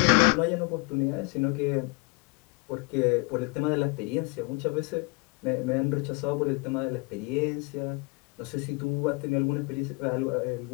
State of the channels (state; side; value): quieter; right; 29.8 dB